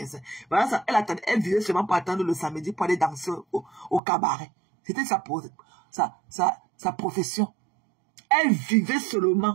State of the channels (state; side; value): drops out; left; at 4.0 s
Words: Voilà ça. Elle vivait seulement pour attendre le samedi pour aller danser au cabaret. C'était sa profession. Elle vivait